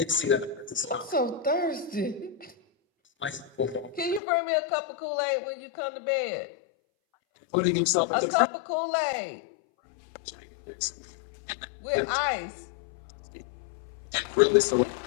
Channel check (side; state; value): right; drops out; at 4.2 s